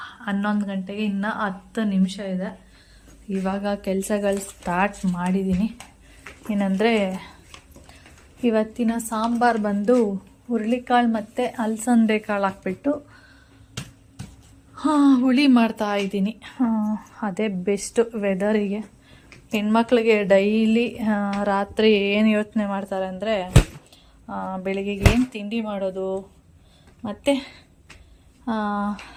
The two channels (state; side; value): identical; both; correlation 1.00